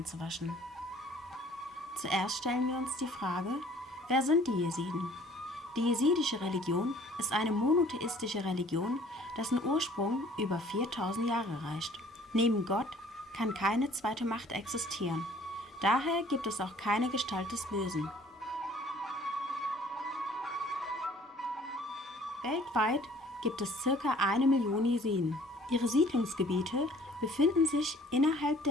Zuerst stellen wir uns die Frage, wer sind die Jesiden? Die jesidische Religion ist eine monotheistische Religion, dessen Ursprung über 4000 Jahre reicht. Neben Gott kann keine zweite Macht existieren. Daher gibt es auch keine Gestalt des Bösen. Weltweit gibt es ca. 1 Million Jesiden. Ihre Siedlungsgebiete befinden sich innerhalb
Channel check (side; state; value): both; normal; correlation 0.54